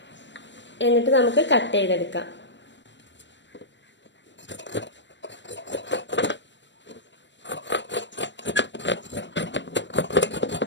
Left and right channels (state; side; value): late; right; 0.53 ms